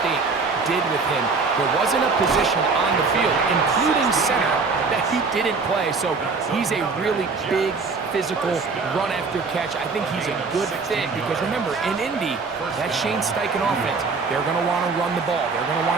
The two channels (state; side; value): quieter; left; 4.5 dB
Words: did with him, there wasn't a position on the field, including center, that he didn't play. So he's a really big, physical, run-after-catch. I think he's a good fit because, remember, in Indy, that Shane Steichen offense, they're going to want to run the ball. They're going to